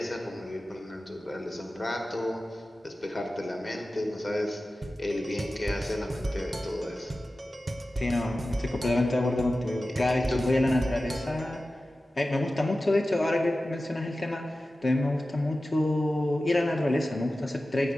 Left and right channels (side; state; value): both; normal; correlation 0.95